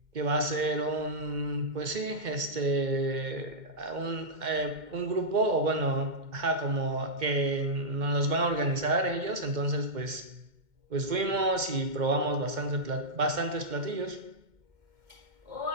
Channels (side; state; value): left; late; 2.1 ms